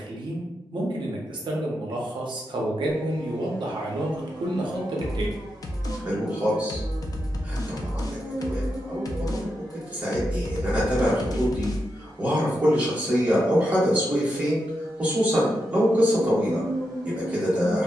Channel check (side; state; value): both; normal; correlation 0.85